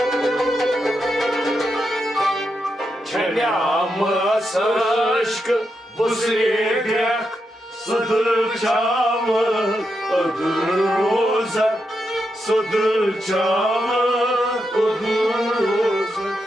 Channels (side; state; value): both; normal; correlation 0.85